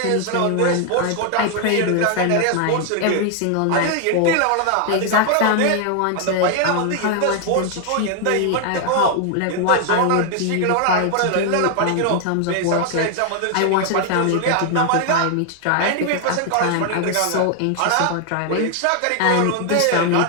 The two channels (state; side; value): different; both; correlation 0.00